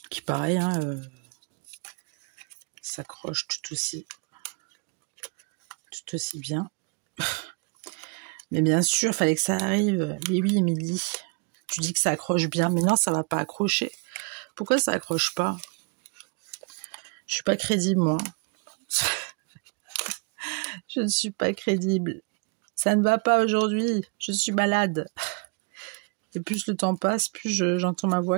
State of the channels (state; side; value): quieter; left; 35.0 dB